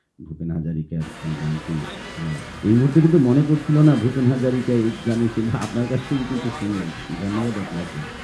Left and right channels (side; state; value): both; identical; correlation 1.00